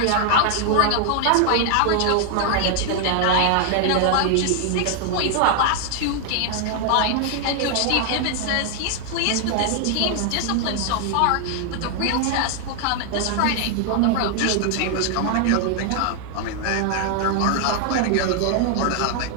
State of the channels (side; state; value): both; different; correlation 0.00